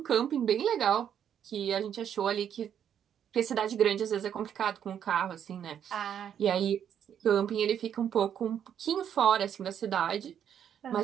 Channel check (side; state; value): left; quieter; 9.0 dB